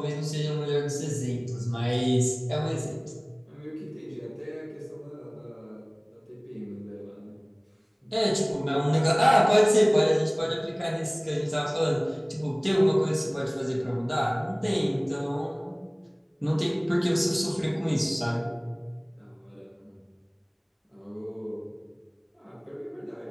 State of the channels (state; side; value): identical; both; correlation 1.00